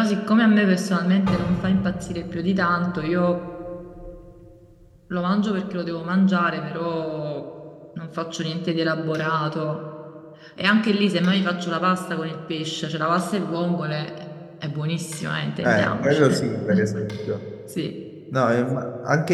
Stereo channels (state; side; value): identical; both; correlation 1.00